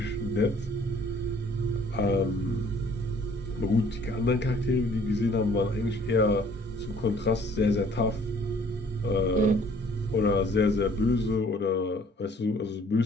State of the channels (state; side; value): normal; both; correlation 0.57